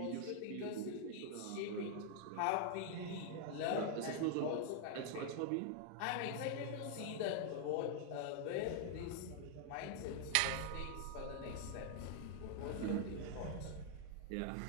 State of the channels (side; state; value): both; different; correlation 0.00